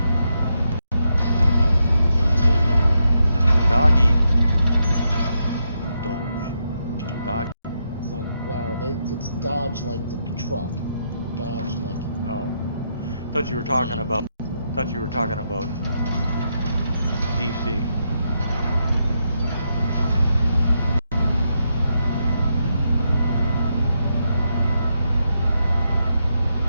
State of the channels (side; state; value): both; inverted; correlation -0.81